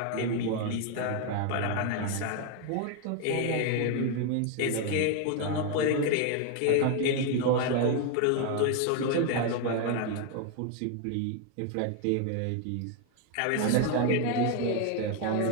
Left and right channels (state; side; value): different; both; correlation 0.01